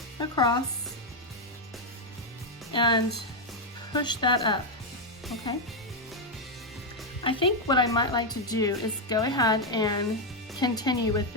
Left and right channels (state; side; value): normal; both; correlation 0.02